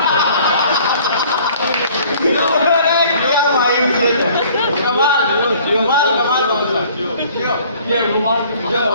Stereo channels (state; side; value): inverted; both; correlation -0.54